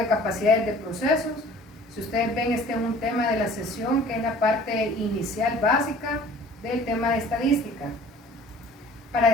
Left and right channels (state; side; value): normal; both; correlation 0.50